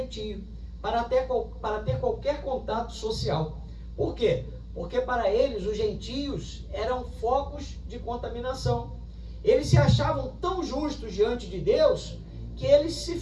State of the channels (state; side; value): identical; both; correlation 1.00